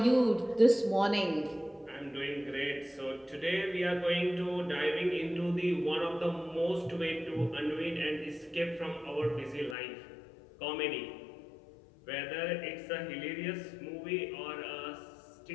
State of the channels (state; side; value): drops out; right; at 9.8 s